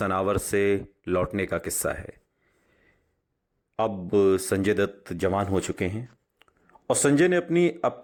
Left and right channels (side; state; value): both; identical; correlation 1.00